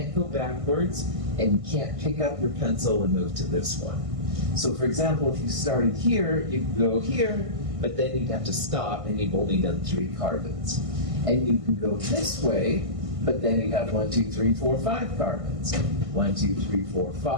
go backwards, and you can't pick up your pencil and move to this one. So for example, if you started here, you could go here, but then you'd have to stop and you've only done 3 carbons. And you can go this way, but then you have 1, 2, 3, 4, 5 carbons. 1, 2, 3, 4,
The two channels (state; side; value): late; left; 1.5 ms